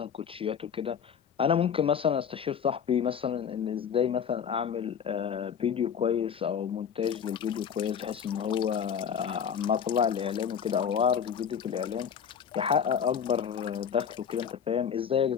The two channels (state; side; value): quieter; right; 7.7 dB